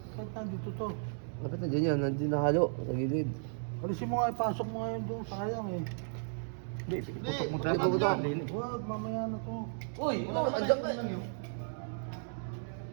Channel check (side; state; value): left; silent; digital silence